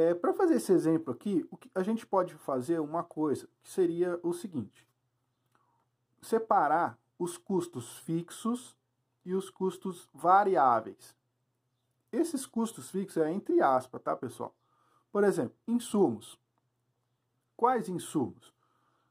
Para fazer esse exemplo aqui, a gente pode fazer uma coisa, que seria o seguinte. Separar os custos fixos e os custos variáveis. Esses custos fixos é entre aspas, tá, pessoal? Por exemplo, insumos. Quais insumos?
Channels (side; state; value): both; identical; correlation 1.00